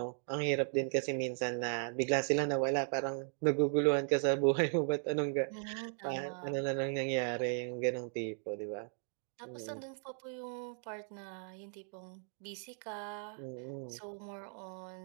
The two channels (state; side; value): silent; left; 53 dB below the other